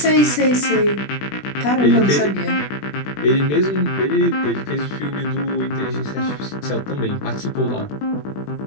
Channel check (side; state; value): right; late; 20 ms